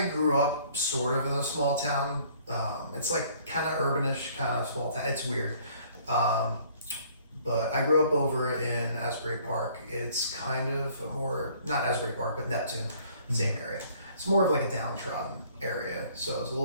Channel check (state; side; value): inverted; both; correlation -0.58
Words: grew up sort of in a small town. It's like kind of urbanish, kind of small town. It's weird. But I grew up over in Asbury Park. It's kind of a more, not Asbury Park, but Neptune, same area. It's more of like a downtrodden area, so it's a